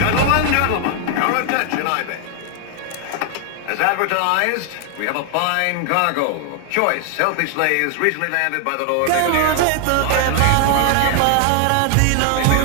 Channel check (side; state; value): both; different; correlation 0.00